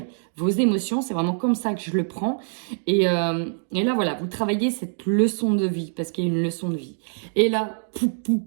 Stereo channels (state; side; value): silent; left; digital silence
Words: vos émotions. C'est vraiment comme ça que je le prends. Et là, voilà, vous travaillez cette leçon de vie, parce qu'il y a une leçon de vie. Et là,